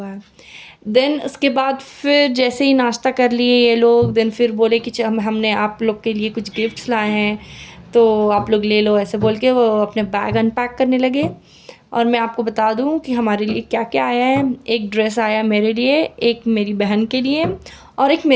है। देन उसके बाद फिर जैसे ही नाश्ता कर लिए ये लोग, देन फिर बोले कि हमने आप लोग के लिए कुछ गिफ्ट्स लाए हैं तो आप लोग ले लो, ऐसे बोल के वो अपने बैग अनपैक करने लगे। और मैं आपको बता दूं कि हमारे लिए क्या क्या आया है। एक ड्रेस आया मेरे लिए, एक मेरी बहन के लिए और एक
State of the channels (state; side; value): identical; both; correlation 1.00